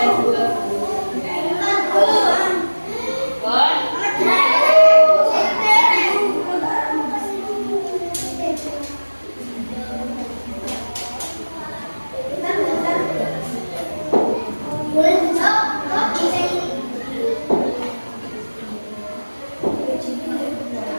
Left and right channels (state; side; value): inverted; both; correlation -1.00